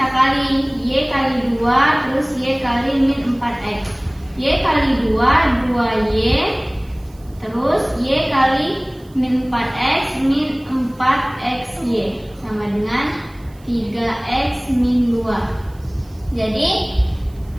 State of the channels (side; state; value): right; noise; hiss, 29 dB below the sound